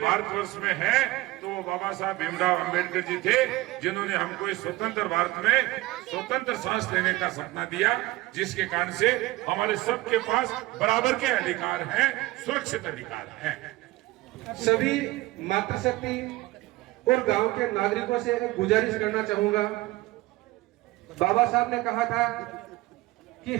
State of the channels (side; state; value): left; quieter; 18.9 dB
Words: में है तो वो बाबा साहब भीमराव अंबेडकर जी थे, जिन्होंने हमको इस स्वतंत्र भारत में स्वतंत्र सांस लेने का सपना दिया, जिसके कारण से हमारे सबके पास बराबर के अधिकार हैं, सुरक्षित अधिकार हैं। सभी मातृशक्ति और गांव के नागरिकों से एक गुजारिश करना चाहूंगा। बाबा साहब ने कहा था कि